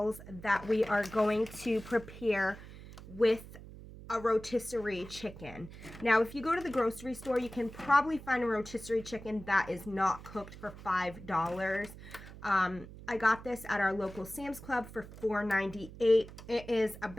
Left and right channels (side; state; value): right; noise; hum, 15 dB below the sound